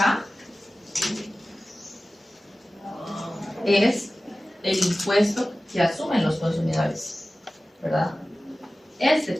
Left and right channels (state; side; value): normal; both; correlation 0.96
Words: es el impuesto que asumen los consumidores, ¿verdad? Este